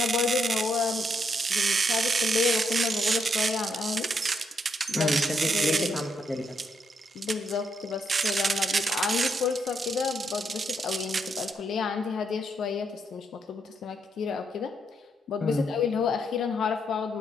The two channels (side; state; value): both; normal; correlation 0.77